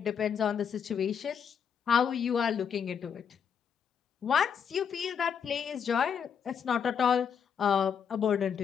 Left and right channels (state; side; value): quieter; right; 7.3 dB